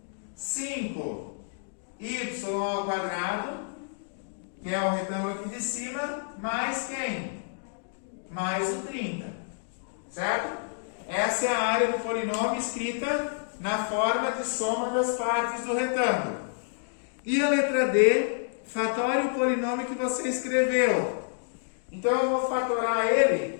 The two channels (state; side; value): silent; right; digital silence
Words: 5y ao quadrado, que é o retângulo aqui de cima, mais quem? Mais o 30, certo? Essa é a área do polinômio escrita na forma de soma das partes do retângulo. E a letra D, fatore o polinômio que você escreveu. Então, eu vou fatorar